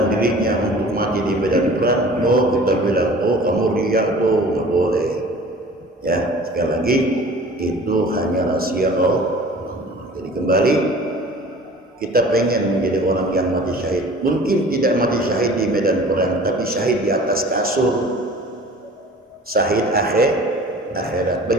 dirinya untuk mati di medan perang. Oh, kita bilang, oh kamu riak tuh, nggak boleh. Ya, sekali lagi itu hanya rahasia Allah. Jadi kembali, kita pengen menjadi orang yang mati syahid. Mungkin tidak mati syahid di medan perang, tapi syahid di atas kasur. Syahid akhirat.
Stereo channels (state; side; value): normal; both; correlation 0.45